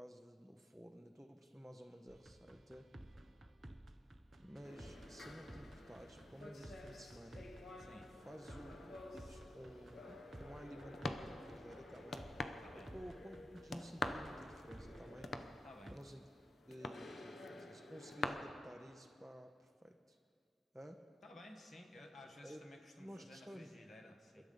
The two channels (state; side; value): normal; both; correlation 0.86